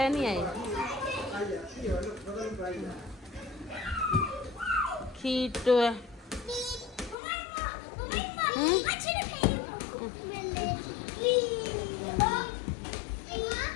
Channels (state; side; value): drops out; right; at 7.2 s